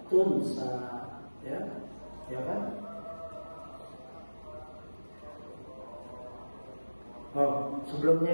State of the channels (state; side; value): inverted; both; correlation -1.00